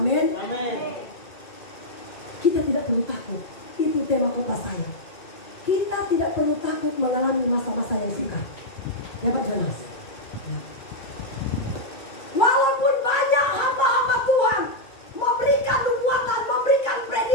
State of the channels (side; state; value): right; late; 2.3 ms